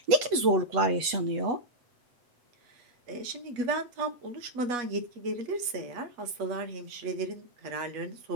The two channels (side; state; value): left; late; 8.1 ms